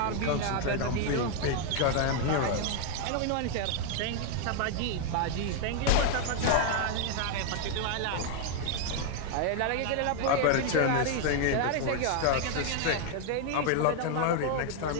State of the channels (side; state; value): both; different; correlation 0.00